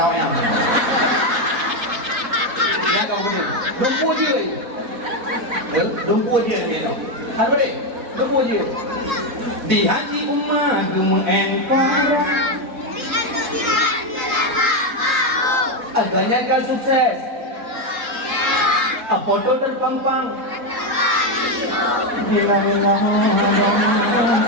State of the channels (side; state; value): left; late; 3.8 ms